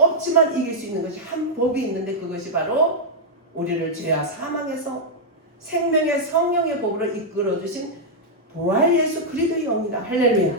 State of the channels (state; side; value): normal; both; correlation -0.05